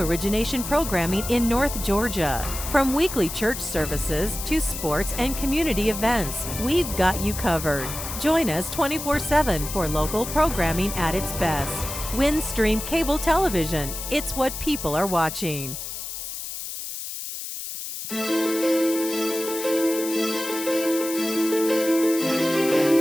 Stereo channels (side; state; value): left; noise; hiss, 7 dB below the sound